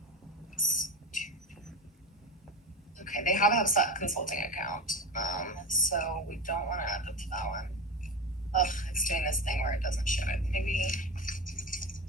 okay, they have a HubSpot consulting account, so we don't want to add them to that one. Ugh, it's doing this thing where it doesn't show it. Maybe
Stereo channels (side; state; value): both; normal; correlation 0.24